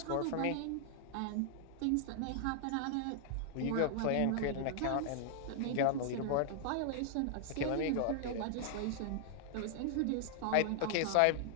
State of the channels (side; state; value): both; different; correlation -0.01